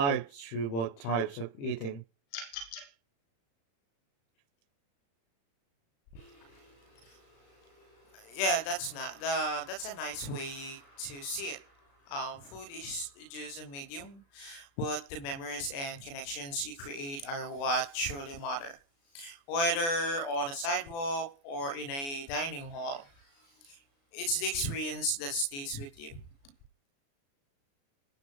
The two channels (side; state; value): right; late; 36 ms